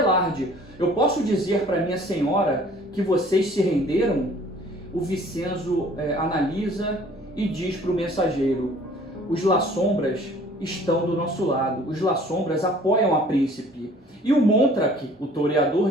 eu posso dizer para minha senhora que vocês se renderam? O Vincenzo analisa e diz para o mensageiro: os La Sombras estão do nosso lado, os La Sombras apoiam a príncipe. E o Montrak, o toreador,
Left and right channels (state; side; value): normal; both; correlation 0.53